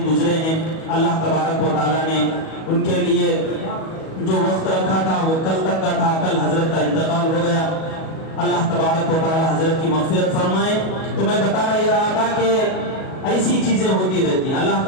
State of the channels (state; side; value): late; right; 37 ms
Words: گزرے ہیں۔ اللہ تبارک و تعالیٰ نے ان کے لیے جو وقت رکھا تھا وہ کل تک کا تھا، کل حضرت کا انتقال ہو گیا۔ اللہ تبارک و تعالیٰ حضرت کی مغفرت فرمائے۔ تو میں بتا رہا تھا کہ ایسی چیزیں ہوتی رہتی ہیں۔ اللہ